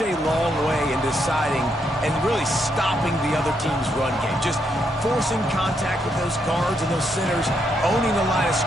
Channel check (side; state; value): both; normal; correlation 0.77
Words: a long way in deciding and really stopping the other team's run game. Just forcing contact with those guards and those centers, owning the line of